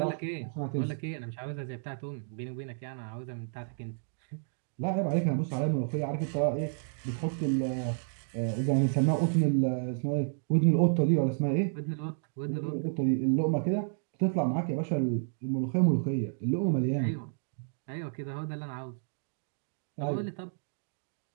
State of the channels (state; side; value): silent; left; digital silence